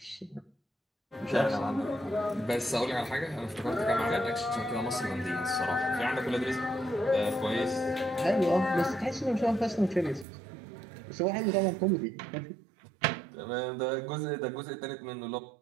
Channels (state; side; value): drops out; left; at 10.2 s